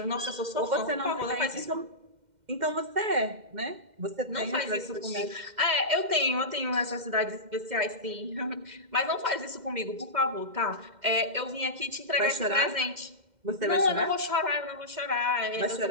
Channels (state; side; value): late; left; 2.1 ms